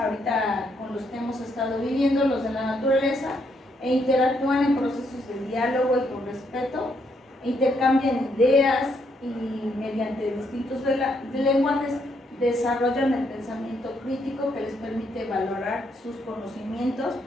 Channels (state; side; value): normal; both; correlation 0.75